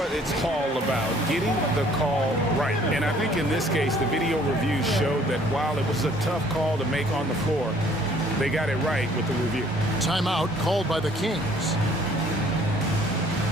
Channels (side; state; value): both; normal; correlation 0.58